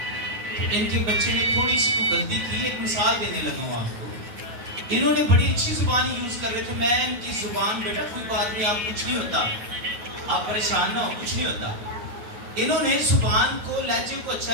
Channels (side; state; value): left; late; 9.2 ms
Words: तो इनके बच्चे ने थोड़ी सी को गलती की। एक मिसाल देने लगा हूँ आपको। इन्होंने बड़ी अच्छी जुबान यूज कर रहे थे। मैं इनकी जुबान, बेटा कोई बात नहीं, आप कुछ नहीं होता, आप परेशान ना हो, कुछ नहीं होता। इन्होंने जुबान को, लहजे को अच्छा